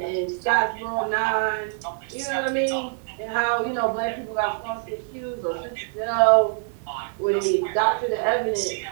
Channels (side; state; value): left; silent; 62 dB below the other